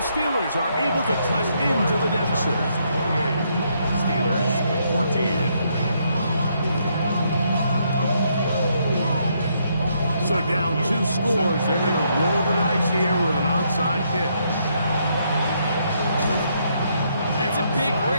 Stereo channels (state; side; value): inverted; both; correlation -0.74